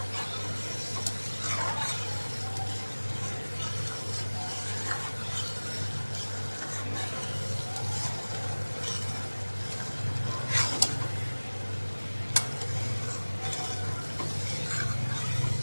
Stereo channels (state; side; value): inverted; both; correlation -1.00